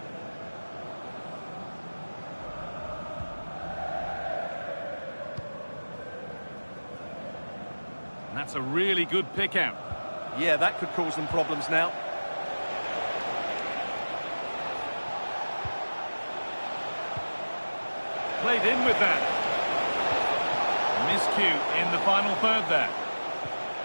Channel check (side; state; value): both; inverted; correlation -1.00